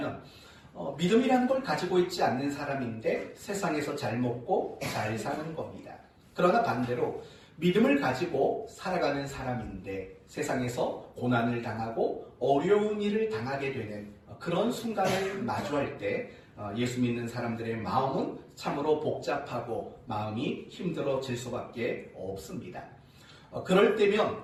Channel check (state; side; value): identical; both; correlation 1.00